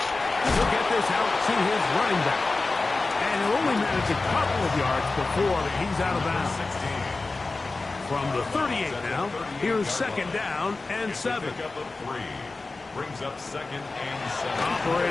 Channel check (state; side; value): quieter; right; 3.5 dB